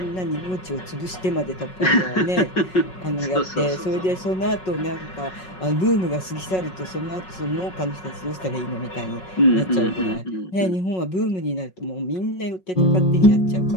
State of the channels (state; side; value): late; right; 5.4 ms